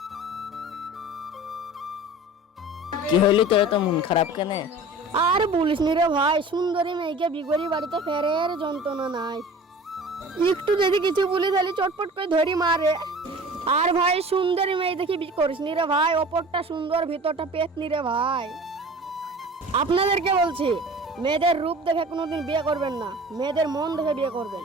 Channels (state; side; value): normal; both; correlation 0.41